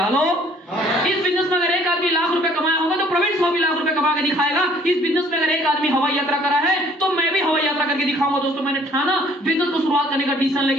हेलो, इस बिजनेस में अगर एक आदमी लाख रुपए कमाया होगा तो प्रवीण साहू भी लाख रुपए कमा के दिखाएगा। इस बिजनेस में अगर एक आदमी हवाई यात्रा करा है तो मैं भी हवाई यात्रा करके दिखाऊंगा दोस्तों। मैंने ठाना, बिजनेस को शुरुआत करने का डिसीजन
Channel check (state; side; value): normal; both; correlation 0.58